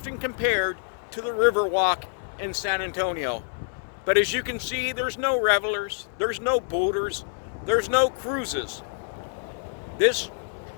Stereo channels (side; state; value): right; silent; digital silence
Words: compared to the Riverwalk in San Antonio. But as you can see, there's no revelers, there's no boaters, there's no cruises. This